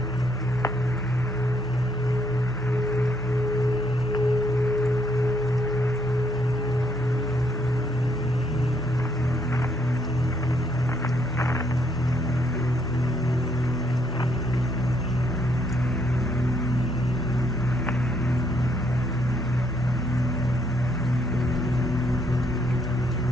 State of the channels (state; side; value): normal; both; correlation 0.72